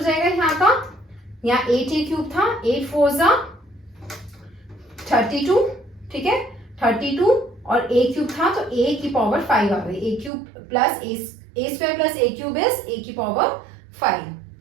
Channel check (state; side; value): drops out; left; at 10.3 s